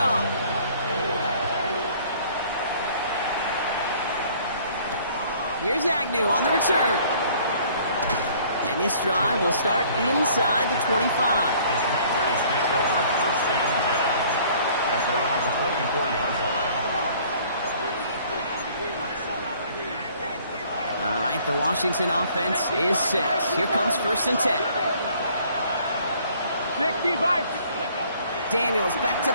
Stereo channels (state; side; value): inverted; both; correlation -0.57